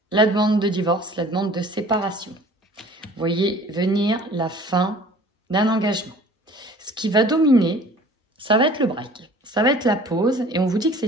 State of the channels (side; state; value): both; normal; correlation 0.48